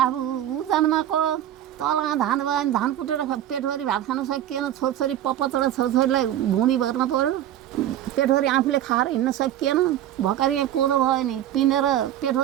ऊ जन्मको तलमा धान भयो भने धान कुटेर पेटभरि भात खान सकिएन, छोरछोरी पपचडा छोरछोरीलाई भुँडी भर्न पर्यो, पेटभरि आफूले खाएर हिँड्न सकिएन, भर्खर यहाँ कोदो भयो नि पिनेर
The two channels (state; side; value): quieter; left; 11.9 dB